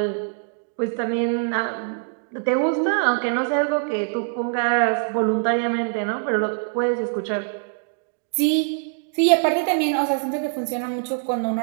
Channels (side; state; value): left; silent; digital silence